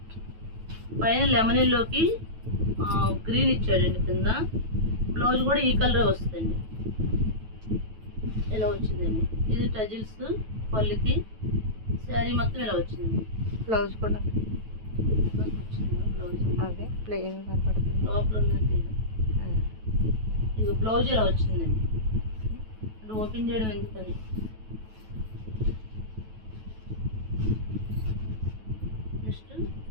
పైన లెమన్ ఎల్లోకి గ్రీన్ ఇచ్చాడండి, కింద బ్లౌజ్ కూడా ఈ కలరే వస్తుందండి, ఇలా వచ్చిందండి। ఇది టజిల్స్ పళ్ళుకి, శారీ మొత్తం ఇలా వచ్చిందండి। బ్లౌజ్ కూడా అదే ప్లెయిన్ కనపడుతుంది, లోపల ఉందండి। ఇది బ్లౌజ్ ఇలా వచ్చిందండి, అంటే ఓపెన్ చేయడం ఎందుకని। నెక్స్ట్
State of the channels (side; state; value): left; late; 9.2 ms